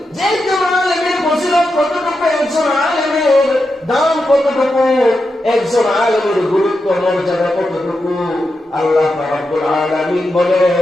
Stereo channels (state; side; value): normal; both; correlation 0.88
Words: যে একজন আলেমের ফজিলত কতটুকু, একজন আলেমের দাম কতটুকু, একজন আলেমের গুরুত্ব মর্যাদা কতটুকু। আল্লাহ রাব্বুল আলামিন